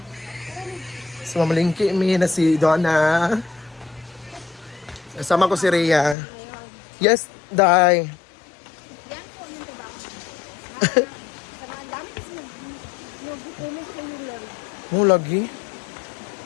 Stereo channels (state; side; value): drops out; right; at 6.2 s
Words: So mamalingki kami na si Donna. Kasama ko si Rhea. Yes, Day. Yan po yung trabaho. Sa mga dami kasi nag-comment kayo lang. Mo lagi.